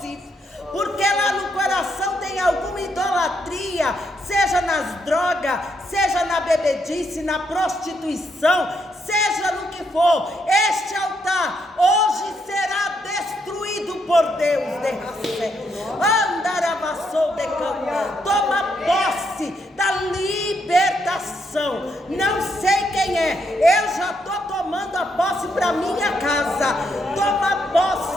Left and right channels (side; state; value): both; normal; correlation 0.77